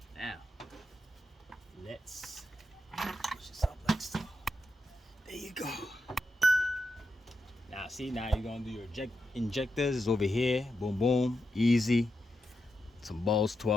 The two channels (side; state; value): both; normal; correlation 0.86